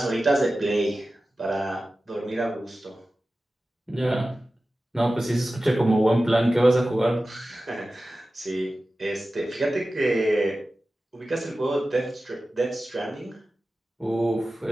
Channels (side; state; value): both; normal; correlation 0.95